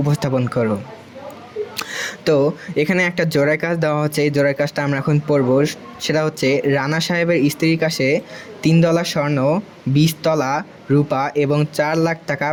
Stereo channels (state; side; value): identical; both; correlation 1.00